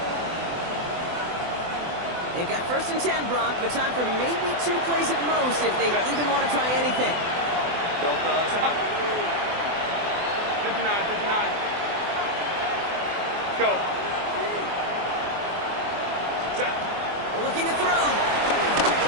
They've got 1st and 10, Brock, but time for maybe 2 plays at most if they even want to try anything. Built 59. Go. Set. Looking to throw.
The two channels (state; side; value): late; left; 24 ms